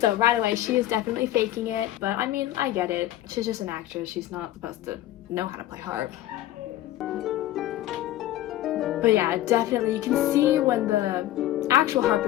right away, she is definitely faking it. But I mean, I get it. She's just an actress. She's not supposed to know how to play harp. But yeah, definitely, you can see when the actual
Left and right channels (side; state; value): right; quieter; 14.2 dB